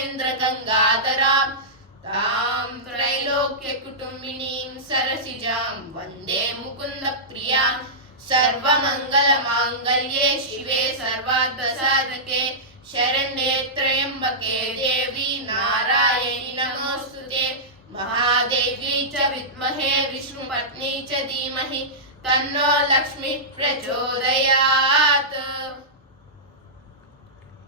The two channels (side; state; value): both; normal; correlation -0.14